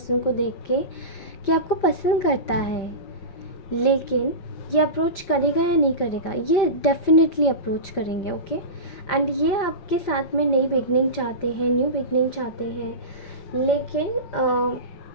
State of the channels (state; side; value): late; right; 5.6 ms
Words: को देख के कि आपको पसंद करता है, लेकिन ये अप्रोच करेगा या नहीं करेगा। ये डेफिनेटली अप्रोच करेंगे, ओके। एंड ये आपके साथ में नई बिगनिंग चाहते हैं, न्यू बिगनिंग चाहते हैं, लेकिन